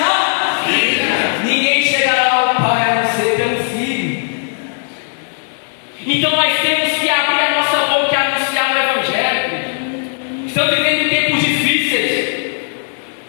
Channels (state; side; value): silent; right; 69 dB below the other